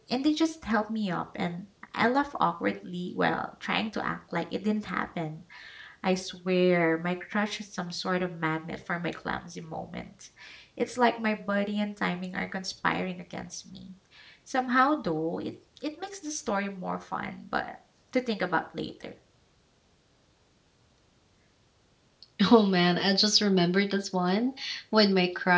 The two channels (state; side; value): identical; both; correlation 1.00